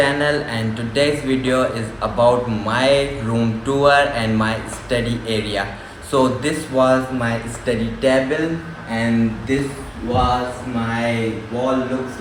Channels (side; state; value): both; identical; correlation 1.00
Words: and today's video is about my room tour and my study area. So this was my study table and this was my wall looks